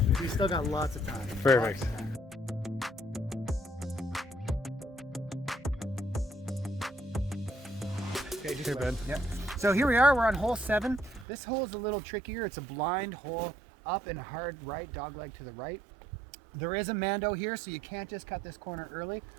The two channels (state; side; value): drops out; left; at 11.2 s